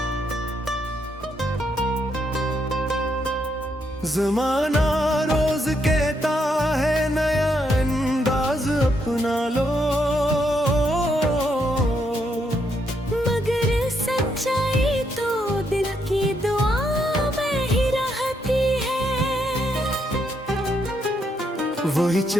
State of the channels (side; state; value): both; normal; correlation 0.77